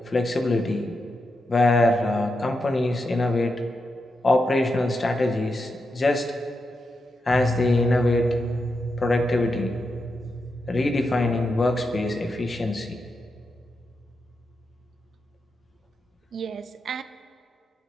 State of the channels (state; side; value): normal; both; correlation 0.86